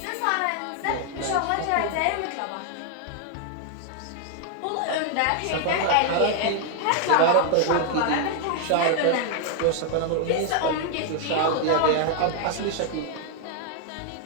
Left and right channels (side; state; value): both; different; correlation 0.00